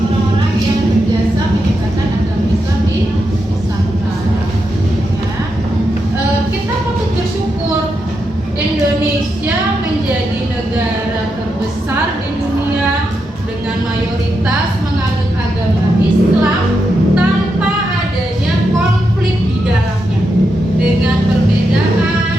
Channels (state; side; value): normal; both; correlation 0.85